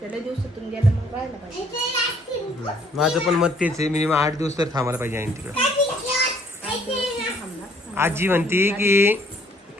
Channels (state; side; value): normal; both; correlation 0.63